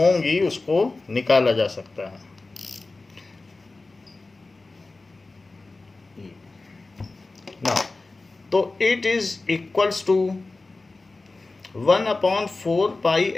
उसको निकाला जा सकता है. नाउ तो it is equals to 1 upon 4 pi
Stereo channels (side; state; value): right; quieter; 3.4 dB